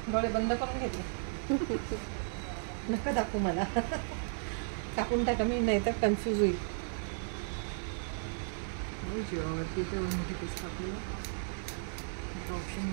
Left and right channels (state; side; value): silent; left; 55 dB below the other